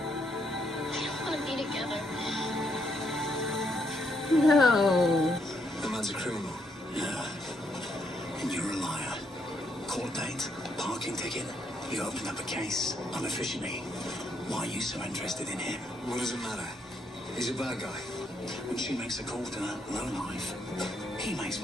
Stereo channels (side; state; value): both; normal; correlation 0.75